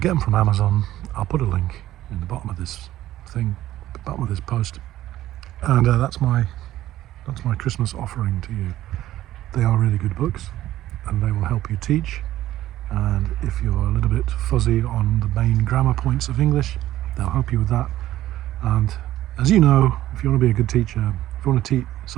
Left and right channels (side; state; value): left; quieter; 14.2 dB